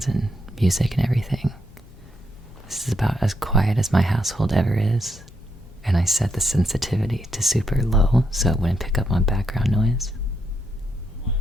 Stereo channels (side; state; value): both; normal; correlation 0.79